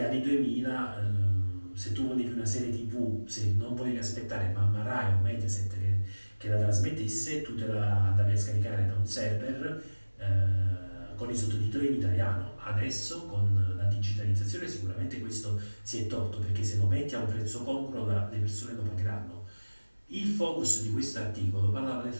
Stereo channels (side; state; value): both; inverted; correlation -1.00